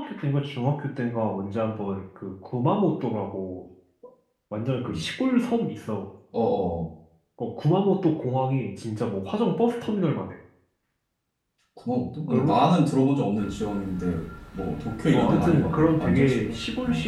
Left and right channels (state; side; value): identical; both; correlation 1.00